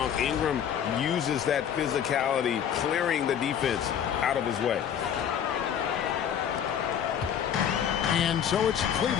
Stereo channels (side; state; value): right; quieter; 8.9 dB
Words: Ingram uses that physicality, clearing the defense out of his way. And so it's